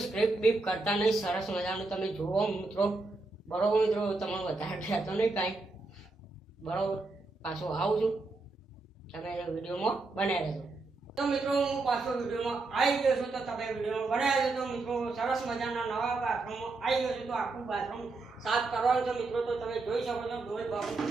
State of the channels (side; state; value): left; quieter; 3.5 dB